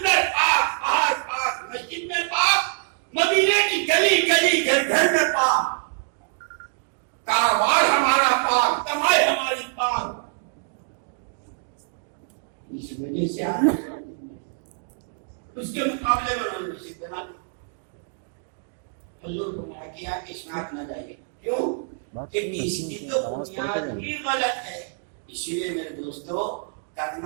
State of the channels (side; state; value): left; silent; 62 dB below the other